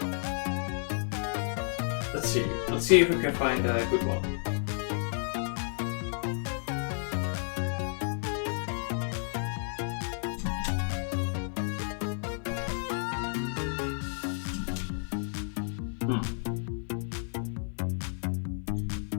Let's see if we can find a good one.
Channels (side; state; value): right; silent; 57 dB below the other